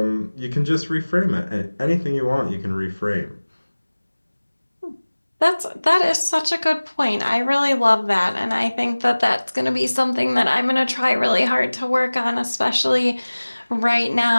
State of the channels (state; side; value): inverted; both; correlation -1.00